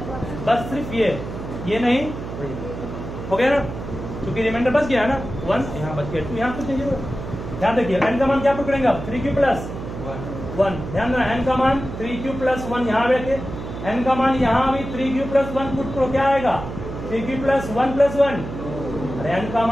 बस सिर्फ ये नहीं हो गया ना, क्योंकि रिमाइंडर बच गया है ना 1, यहाँ बच गया 2, यहाँ कुछ नहीं 0। ध्यान देखिए n का मान क्या प्रूफ करेंगे आप 3q प्लस 1। ध्यान देना, n का मान 3q प्लस 1 यहाँ बैठे, n का मान यहाँ भी 3q प्लस 1 पुट करो, क्या आएगा 3q प्लस 1 प्लस 1। अरे n का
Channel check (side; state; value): right; noise; hum, 9 dB below the sound